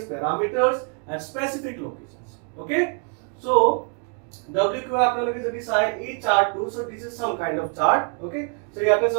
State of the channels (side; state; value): left; quieter; 40.0 dB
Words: parameters at specific locations, okay? So WQI আপোনালোকে যদি চাই এই চাৰ্টটো, so this is some kind of chart, okay? So ইয়াতে